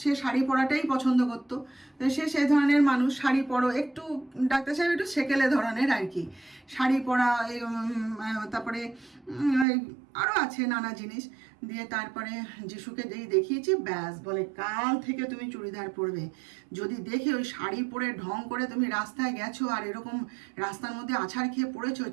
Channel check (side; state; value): left; drops out; at 9.7 s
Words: সে শাড়ি পরাটাই পছন্দ করতো, সে সেই ধরনের মানুষ, শাড়ি পরো একটু, ডাক্তার সাহেব একটু সেকেলে ধরনের আর কি, শাড়ি পরা, তারপরে আরও আছে নানা জিনিস। দিয়ে তারপরে যিশুকে যেই দেখিয়েছি, ব্যাস বলে কাল থেকে তুমি চুড়িদার পরবে। যদি দেখে ওই শাড়ি পরে ঢং করে তুমি রাস্তায় গেছো আর এরকম রাস্তার মধ্যে আছাড় খেয়ে পড়েছো,